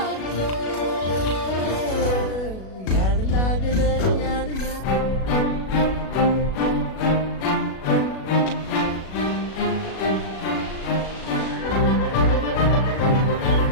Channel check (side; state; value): right; late; 37 ms